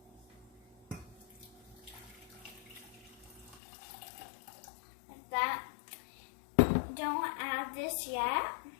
Like that. Don't add this yet,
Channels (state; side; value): drops out; right; at 3.6 s